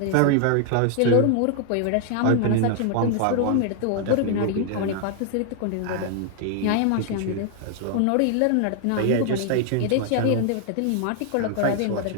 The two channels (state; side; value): different; both; correlation 0.00